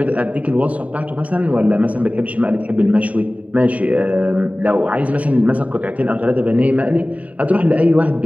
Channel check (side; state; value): left; late; 0.069 ms